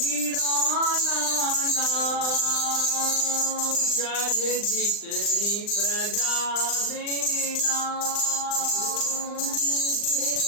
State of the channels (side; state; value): right; late; 39 ms